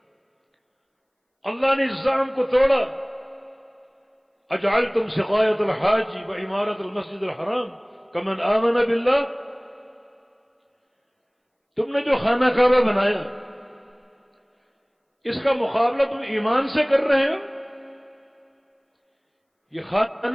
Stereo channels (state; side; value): identical; both; correlation 1.00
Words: اللہ نے اس زعم کو توڑا۔ اجعلتم سقایۃ الحاج وعمارۃ المسجد الحرام کمن آمن باللہ، تم نے جو خانہ کعبہ بنایا اس کا مقابلہ تم ایمان سے کر رہے ہو؟ یہ